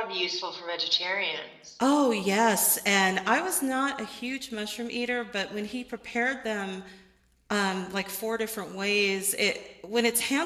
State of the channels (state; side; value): identical; both; correlation 1.00